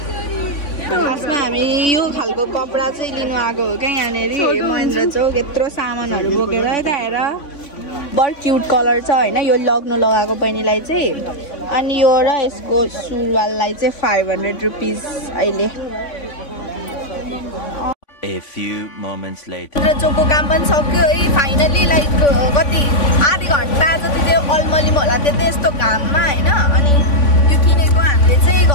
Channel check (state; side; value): late; right; 3.5 ms